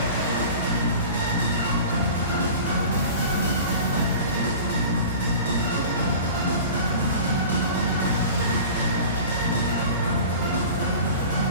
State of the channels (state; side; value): inverted; both; correlation -0.39